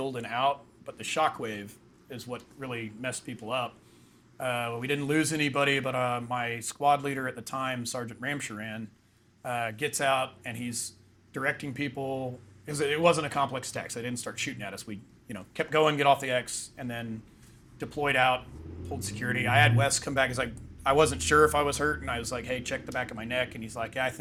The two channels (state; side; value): identical; both; correlation 1.00